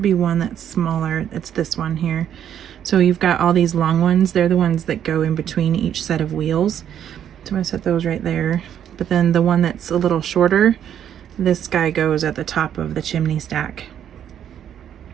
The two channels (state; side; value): quieter; left; 9.7 dB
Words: be one that's smaller. It's this one here. So you've got all these long ones. They're the ones that go in between each set of wheels. So I'm going to set those right there. But then the one that's a little shorter, this guy goes at the top of the chimney stack.